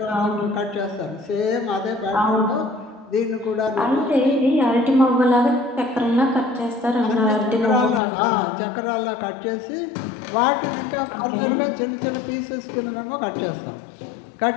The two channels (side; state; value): right; drops out; at 8.0 s